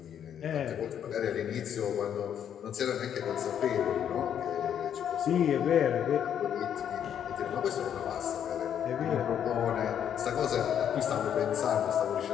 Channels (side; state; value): right; quieter; 9.2 dB